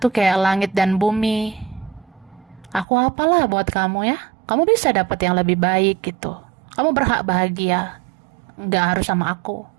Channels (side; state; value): left; drops out; at 2.9 s